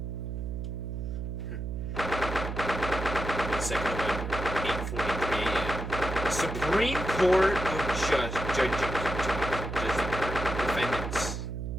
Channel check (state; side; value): noise; right; hum, 4 dB below the sound